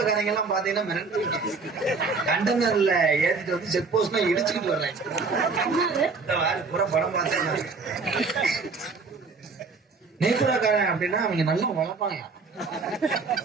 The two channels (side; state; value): left; quieter; 4.4 dB